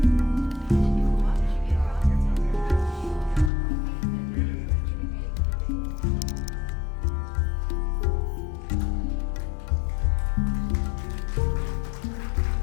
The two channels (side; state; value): right; drops out; at 3.5 s